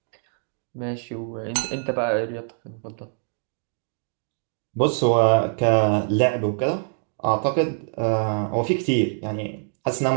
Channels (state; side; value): silent; left; 60 dB below the other